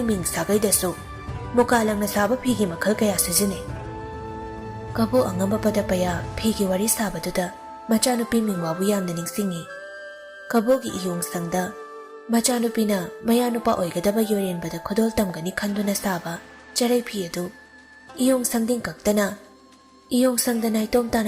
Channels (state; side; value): identical; both; correlation 1.00